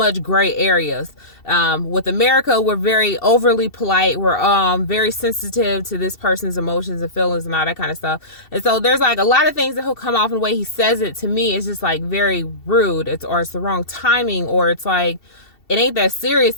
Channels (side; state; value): right; late; 2.7 ms